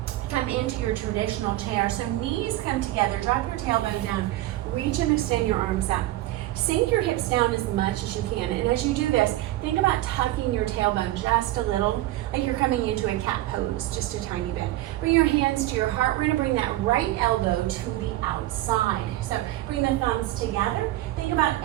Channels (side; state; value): left; quieter; 16.1 dB